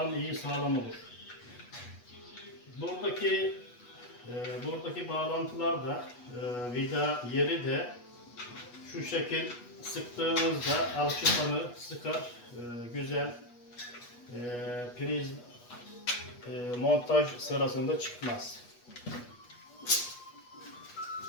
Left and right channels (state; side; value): late; right; 8.2 ms